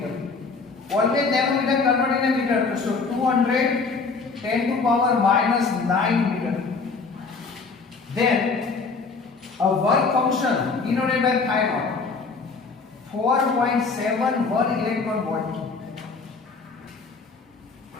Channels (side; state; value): right; quieter; 4.5 dB